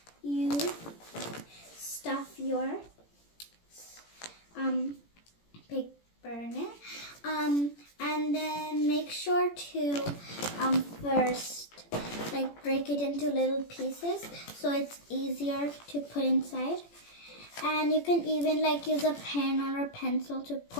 you stuff your paper in it. And then make sure to first break it into little pieces so it's easier to put inside. And you can even use a pen or a pencil to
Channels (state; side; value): late; right; 17 ms